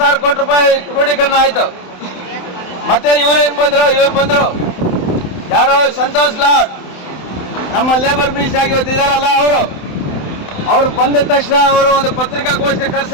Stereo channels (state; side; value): late; right; 27 ms